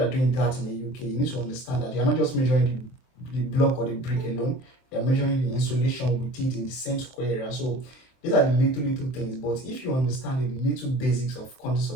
are doing that in the UK, you need to understand that you are not just measuring the block or the brick alone. You are measuring the insulation with it in the same square area. So these are the little things. But if you understand the little basics of quantity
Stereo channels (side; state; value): right; late; 24 ms